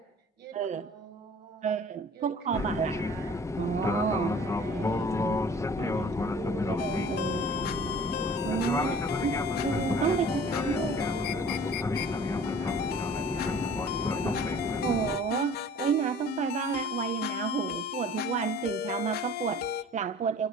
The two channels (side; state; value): both; normal; correlation 0.48